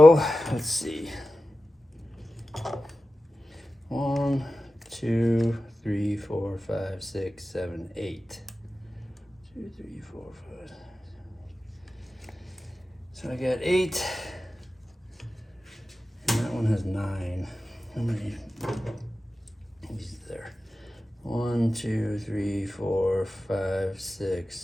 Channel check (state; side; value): normal; both; correlation 0.94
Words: let's see. 1, 2, 3, 4, 5, 6, 7, 8. 2, 3, 4, 5. So I got 8. And that one has 9. How many? These there. 1, 2, 3, 4, 5, 6,